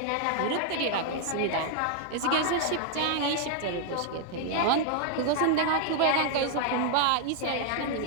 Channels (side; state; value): both; different; correlation 0.00